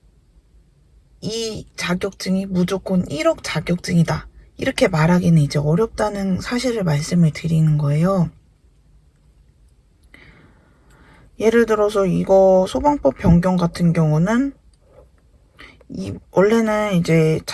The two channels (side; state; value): both; identical; correlation 1.00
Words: 이 자격증이 무조건 1억 자격증이다. 이렇게 말하기는 이제 어렵다는 사실을 말씀을 드리는 거예요. 예를 들어서 이거 소방법 변경 같은 경우는 원래는 이제